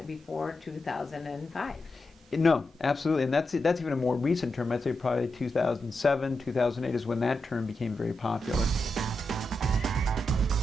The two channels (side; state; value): both; normal; correlation 0.87